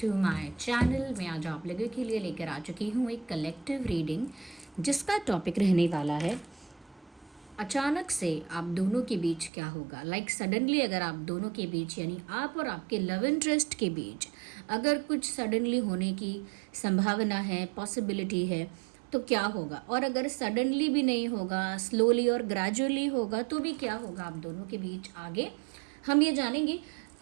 my channel. मैं आज आप लोगों के लिए लेकर आ चुकी हूँ एक कलेक्टिव रीडिंग जिसका टॉपिक रहने वाला है अचानक से आप दोनों के बीच क्या होगा। सडनली अगर आप दोनों के बीच यानी आप और आपके लव इंटरेस्ट के बीच अगर कुछ सडनली होने की संभावना है, पॉसिबिलिटी है, तो क्या होगा। और अगर सडनली भी नहीं होगा, स्लोली और ग्रेजुअली होगा, तो भी क्या होगा आप दोनों के बीच आगे, हम ये जानेंगे।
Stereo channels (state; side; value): drops out; left; at 9.5 s